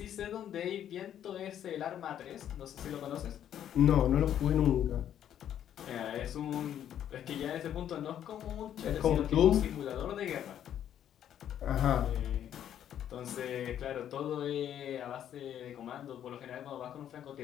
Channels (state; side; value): quieter; right; 10.3 dB